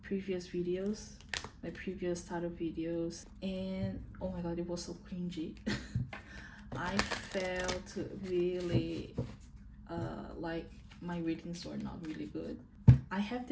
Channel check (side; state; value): both; identical; correlation 1.00